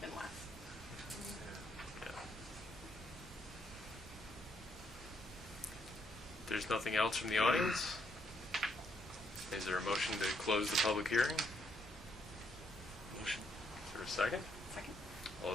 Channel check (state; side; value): normal; both; correlation 0.74